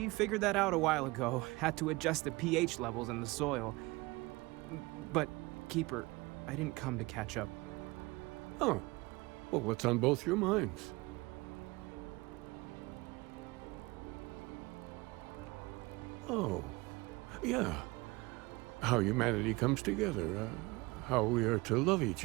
figured that out a while ago. Had to adjust the pH levels in the soil. But, Keeper, I didn't come to catch up. Oh. Well, what's on both your minds? Oh. Yeah. How humanity comes together. How we are to love each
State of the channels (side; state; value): left; quieter; 23.0 dB